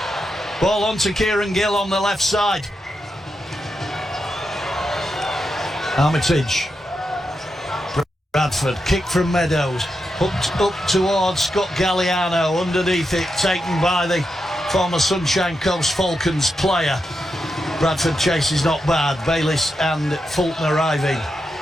Ball on to Kieran Gill on the left side. Armitage. Bradford, kick from Meadows. Hooked up towards Scott Galliano. Underneath it, taken by the former Sunshine Coast Falcons player. Bradford chase is not bad. Bayliss and Fulton arriving.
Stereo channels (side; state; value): both; normal; correlation 0.86